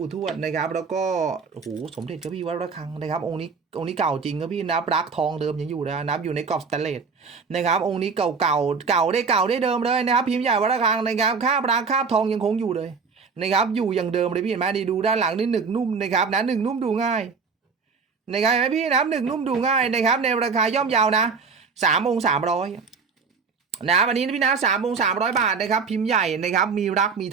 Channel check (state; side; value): quieter; left; 5.3 dB